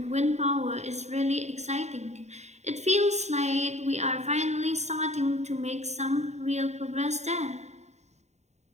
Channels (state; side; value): late; left; 0.32 ms